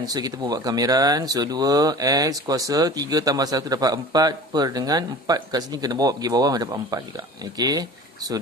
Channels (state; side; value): normal; both; correlation 0.39